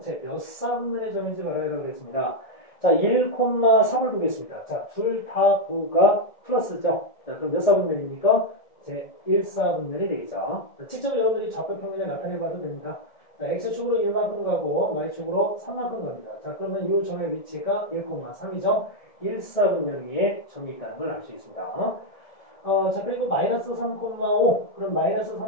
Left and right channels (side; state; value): right; late; 1.7 ms